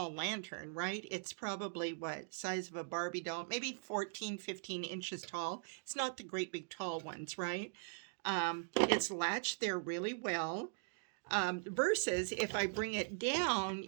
lantern, right? It's probably, what, size of a Barbie doll? Maybe 14, 15 inches tall. It's not the great big tall ones, right? It's latched there really well. Versus if I bring it down,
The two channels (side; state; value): left; silent; digital silence